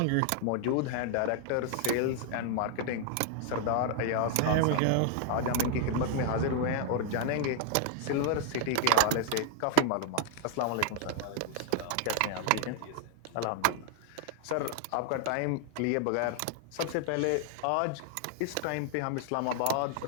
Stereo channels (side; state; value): both; different; correlation 0.00